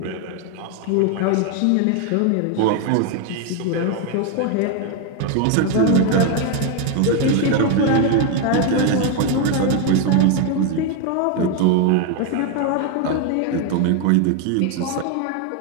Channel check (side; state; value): both; different; correlation 0.01